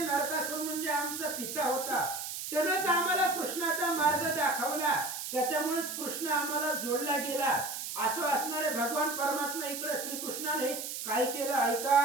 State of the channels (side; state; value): right; noise; hiss, 6 dB below the sound